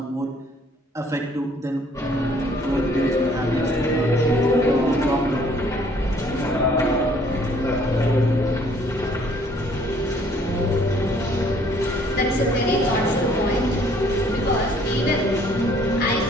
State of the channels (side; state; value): both; normal; correlation 0.60